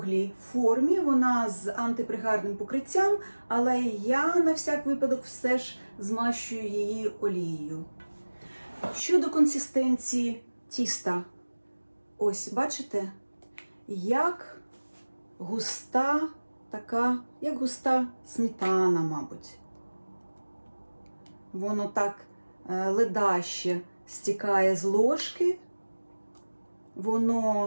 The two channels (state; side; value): inverted; both; correlation -1.00